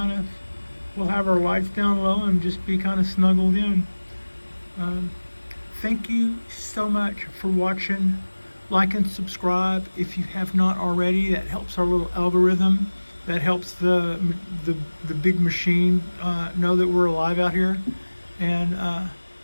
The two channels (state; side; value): inverted; both; correlation -1.00